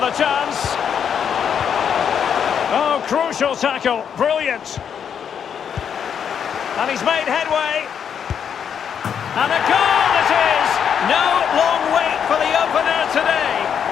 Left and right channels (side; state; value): right; quieter; 7.9 dB